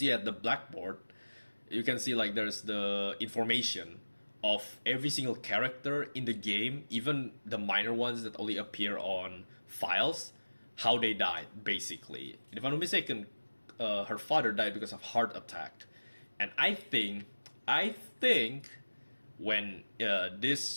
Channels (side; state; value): both; inverted; correlation -1.00